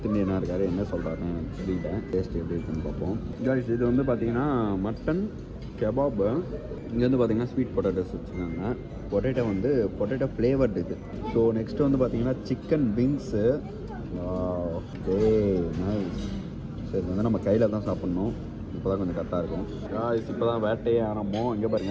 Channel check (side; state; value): both; identical; correlation 1.00